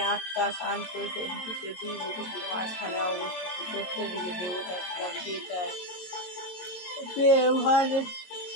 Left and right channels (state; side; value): late; right; 22 ms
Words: আত্মা শান্ত সঞ্চিত দুই বুকুটির মাঝখানে অবস্থিত সত্য দিকে দেবতা ছিলাম চিতায় ব্যবহারে